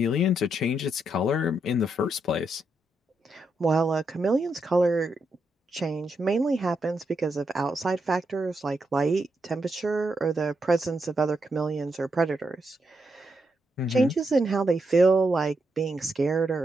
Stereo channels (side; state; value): both; normal; correlation 0.81